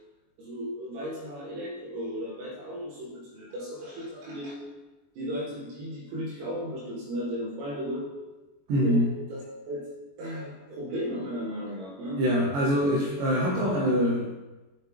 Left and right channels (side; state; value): left; late; 21 ms